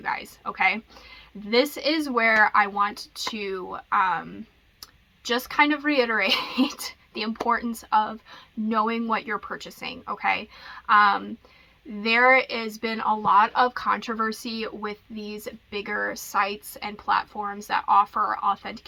guys, okay? This is where I want to just kind of reiterate the importance of knowing what you're purchasing, okay? There has been a lot of controversy with these bigger sites and platforms that offer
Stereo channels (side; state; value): both; identical; correlation 1.00